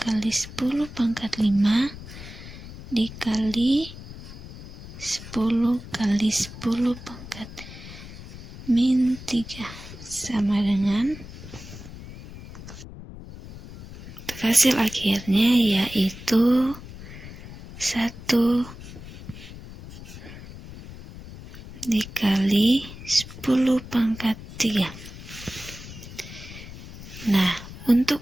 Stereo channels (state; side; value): noise; left; rumble, 14 dB below the sound